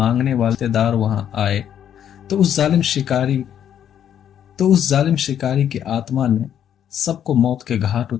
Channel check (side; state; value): right; quieter; 9.7 dB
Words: वाले रिश्तेदार वहां आए तो उस जालिम शिकारी की आत्मा ने सबको मौत के घाट